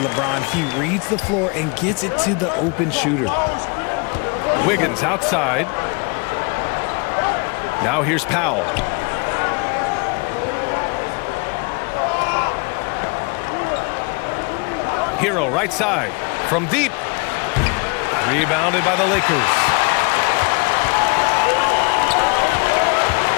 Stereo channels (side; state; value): right; quieter; 31.1 dB